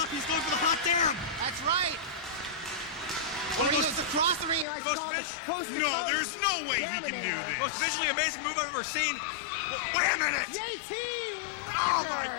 He's going for the hot Damm. That's right. When he goes across the ring, he likes to call it coast to No, coast. there's no way he can do this. Most visually amazing move I've ever seen. Wait a minute. JT Rodgers! Oh my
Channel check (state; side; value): drops out; right; at 4.7 s